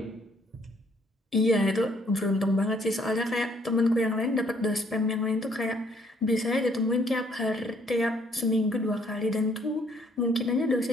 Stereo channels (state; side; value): normal; both; correlation 0.65